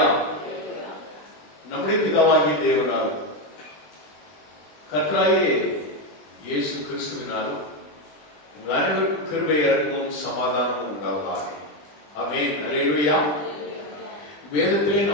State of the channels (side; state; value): right; late; 20 ms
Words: நம்முடைய பிதாவாகிய தேவனாலும் கர்த்தராகிய இயேசு கிறிஸ்துவினாலும் உங்கள் அனைவருக்கும் கிருபை, இரக்கமும் சமாதானமும் உண்டாவதாக. ஆமென். ஹல்லேலூயா. வேதத்திலே